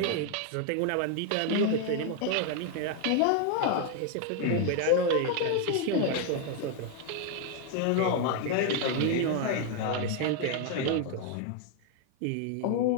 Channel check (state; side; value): different; both; correlation 0.00